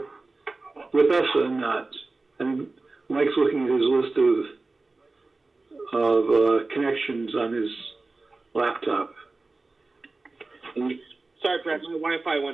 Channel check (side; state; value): left; quieter; 3.5 dB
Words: with us or not? And Mike's looking at his list of connections on his laptop. Sorry, Brad, my Wi-Fi